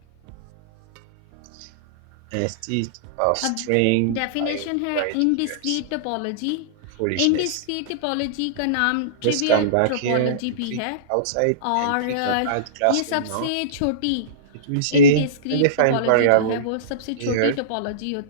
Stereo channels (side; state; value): both; different; correlation -0.04